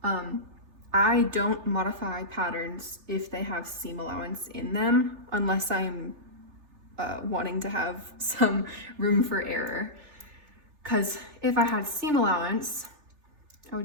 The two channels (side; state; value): left; late; 3.3 ms